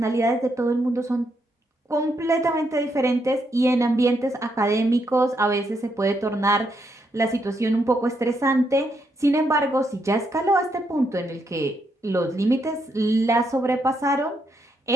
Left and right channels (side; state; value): both; normal; correlation 0.78